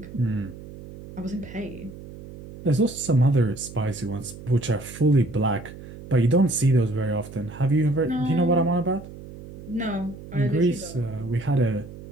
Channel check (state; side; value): noise; right; hum, 15 dB below the sound